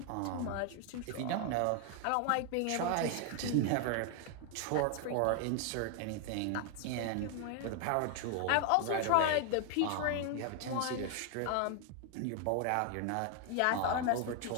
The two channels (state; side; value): different; both; correlation 0.00